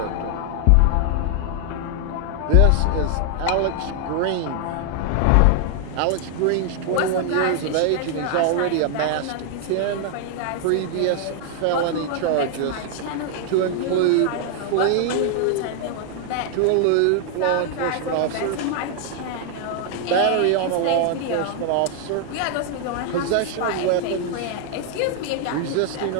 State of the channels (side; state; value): both; different; correlation 0.00